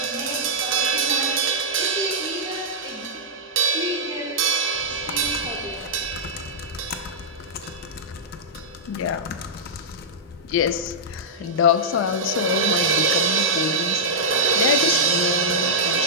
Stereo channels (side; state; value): both; normal; correlation -0.09